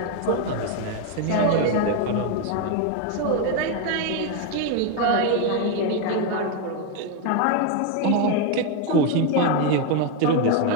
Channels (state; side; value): different; both; correlation 0.01